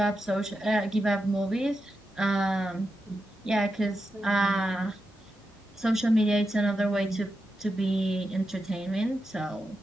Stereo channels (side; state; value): both; normal; correlation 0.88